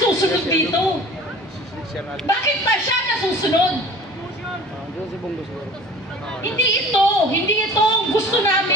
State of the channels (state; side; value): normal; both; correlation 0.43